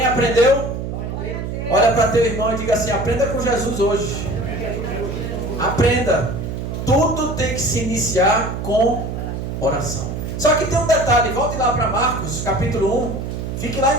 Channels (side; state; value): right; noise; hum, 5 dB below the sound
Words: aprendeu? Olha para teu irmão e diga assim: aprenda com Jesus hoje. Aprenda. Tudo tem que se iniciar com oração. Só que tem um detalhe, volte lá para Marcos, capítulo 1. Fique lá